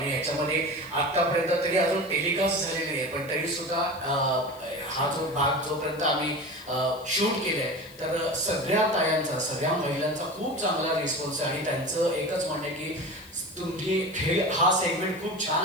याच्यामध्ये आतापर्यंत तरी अजून टेलिकास्ट झालेली नाही, पण तरी सुद्धा हा जो भाग जोपर्यंत आम्ही शूट केलंय, तर सगळ्या तायांचा, सगळ्या महिलांचा खूप चांगला रिस्पॉन्स आहे. आणि त्यांचं एकच म्हणणं आहे की तुम्ही हा सेगमेंट खूप छान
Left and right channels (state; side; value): noise; left; hiss, 22 dB below the sound